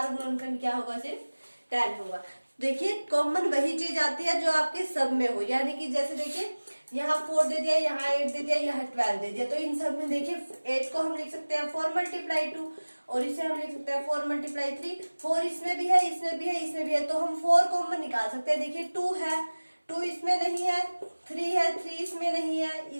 गुणनखंड क्या होगा सिर्फ 10 होगा। देखिए कॉमन वही चीज आती है जो आपके सब में हो, यानी कि जैसे देखिए यहाँ 4 दे दिया, यहाँ 8 दे दिया, यहाँ 12 दे दिया, तो इन सब में देखिए 8 को हम लिख सकते हैं 4 × 2 और इसे हम लिख सकते हैं 4 × 3। 4 इसमें भी है, इसमें भी है, इसमें भी है, तो हम 4 कॉमन निकाल सकते हैं। देखिए 2 है, 2 इसमें नहीं है, 3 है, 3 इसमें नहीं है,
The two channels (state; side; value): inverted; both; correlation -1.00